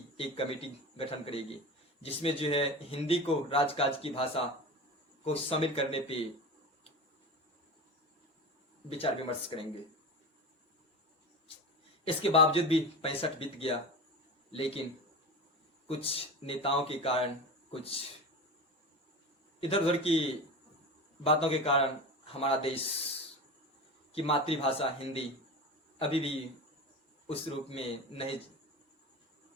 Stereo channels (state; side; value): normal; both; correlation 0.28